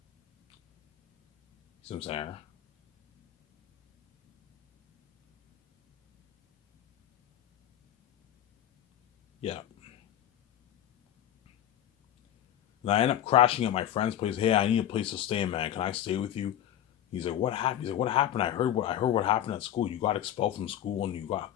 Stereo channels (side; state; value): right; quieter; 11.3 dB